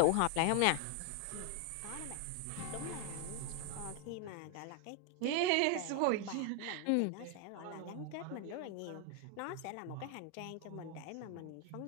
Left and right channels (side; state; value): both; different; correlation 0.01